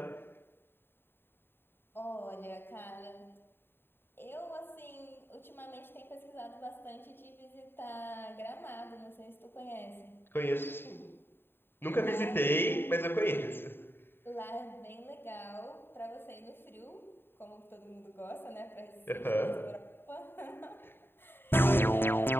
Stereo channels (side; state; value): right; late; 0.10 ms